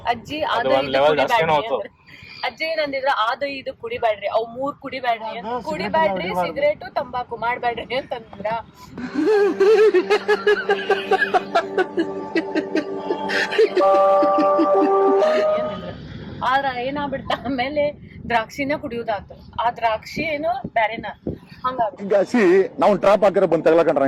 ಅಜ್ಜಿ ಅದು ಅದು ಒಂದ್ ಇದು level ಕುಡಿಬ್ಯಾಡ್ರಿ ಜಾಸ್ತಿನೇ ಹೋತು. ಅಂದ್ರ. ಅಜ್ಜಿ ಏನಂದಿದ್ರ ಅದು ಇದು ಕುಡಿಬ್ಯಾಡ್ರಿ, ಅವ್ 3 ಕುಡಿಬ್ಯಾಡ್ರಿ, ಕುಡಿಬ್ಯಾಡ್ರಿ, ಸಿಗರೇಟು ತಂಬಾಕು ಮಾಡ್ಬ್ಯಾಡ್ರಿ ಅಂತಂದ್ರ. ಆದ್ರ ಏನಾಗ್ಬಿಡ್ತ ಆಮೇಲೆ ದ್ರಾಕ್ಷಿನ ಕುಡಿಯೋದಾತ. ಆ ದ್ರಾಕ್ಷಿ ಏನು ಬ್ಯಾರೆನ ಹಂಗಾಗ್ಬಿಡ್ತ. ಈಗ ನಾವು ಟ್ರಾಪ್ ಹಾಕಿರೋ ಬಂದ್ ತಗೊಳಕಂಡ್ರೆ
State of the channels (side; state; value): both; identical; correlation 1.00